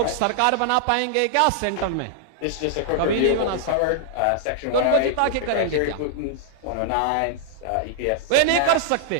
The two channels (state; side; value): different; both; correlation -0.01